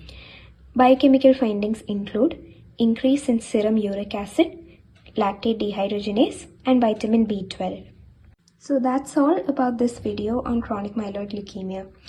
Biochemical findings include increase in serum uric acid, lactate dehydrogenase and vitamin B12. So that's all about this video on chronic myeloid leukemia.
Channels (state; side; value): identical; both; correlation 1.00